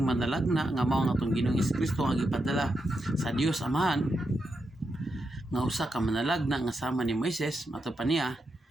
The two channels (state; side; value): normal; both; correlation 0.85